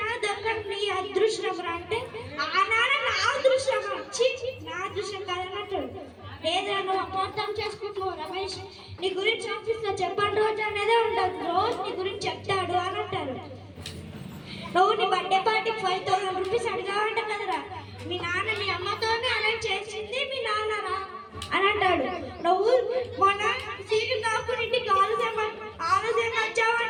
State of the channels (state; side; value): identical; both; correlation 1.00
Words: దొరకడం నీ అదృష్టం రా అంటే, ఆ నాన్న నా అదృష్టం వచ్చి నా అదృష్టం కాదని అంటాడు. లేదా నువ్వు అపార్థం చేసుకుంటున్నావు రమేష్, నీ గురించి ఆఫీస్లో చెప్పండి రోజు అనేదే ఉండదు, రోజు నీ గురించి చెప్తాడు అని అంటారు. నువ్వు నీ బర్త్డే పార్టీకి 5,000 రూపీస్ అడిగావంట కదరా, మీ నాన్న మీ అమ్మతోనే అరేంజ్ చేసింది మీ నాన్నరా అని అంటాడు. నువ్వు మొన్న సీటు కాకుండా ఇంటికి ఆలస్యం